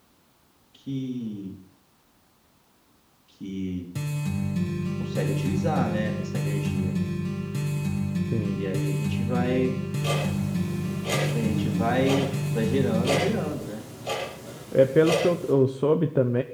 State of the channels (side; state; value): both; identical; correlation 1.00